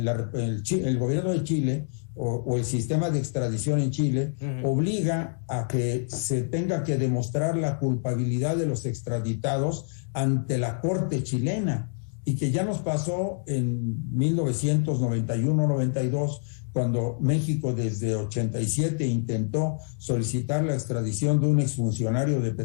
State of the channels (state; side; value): silent; right; digital silence